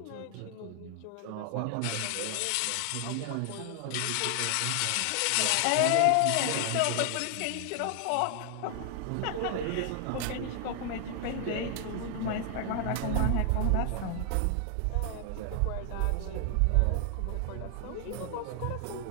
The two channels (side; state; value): both; different; correlation 0.00